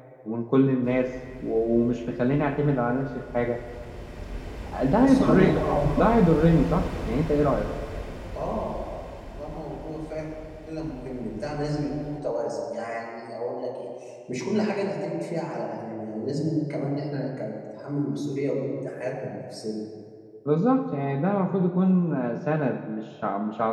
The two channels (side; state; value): both; identical; correlation 1.00